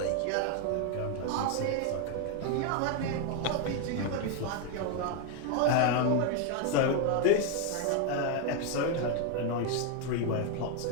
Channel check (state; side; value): different; both; correlation 0.01